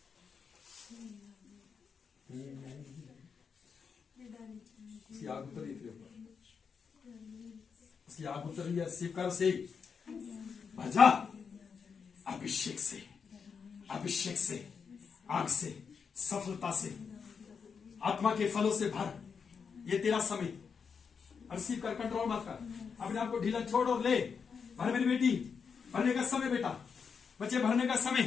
उसकी आग उतरी तेरे ऊपर उसकी आग उतरी है रिसीव कर से भजा अभिषेक से आग से सफलता से आत्मा के फलों से भर ये तेरा समय रिसीव कर कंट्रोल मत कर अपने आप को ढीला छोड़ और ले भर मेरी बेटी भरने का समय बेटा बच्चे भरने का समय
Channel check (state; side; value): quieter; right; 6.1 dB